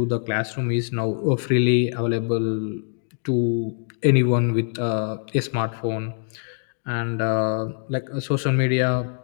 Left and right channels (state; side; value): silent; right; 63 dB below the other